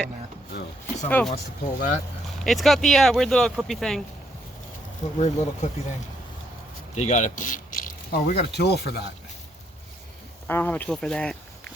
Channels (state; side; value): normal; both; correlation 0.73